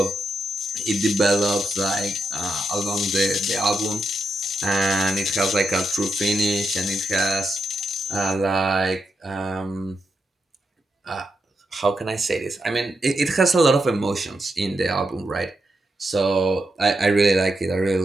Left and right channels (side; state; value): both; normal; correlation 0.84